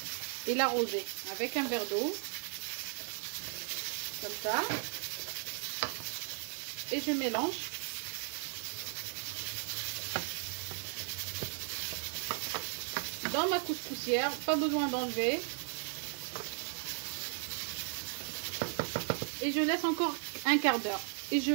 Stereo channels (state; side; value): silent; left; 54 dB below the other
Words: et l'arroser avec un verre d'eau. Comme ça. Et je mélange. Dans ma couscoussière, pas besoin d'enlever. Et je laisse encore un quart d'heure. Et je